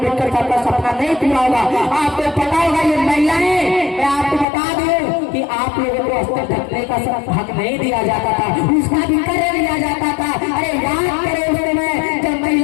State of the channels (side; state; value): right; drops out; at 4.5 s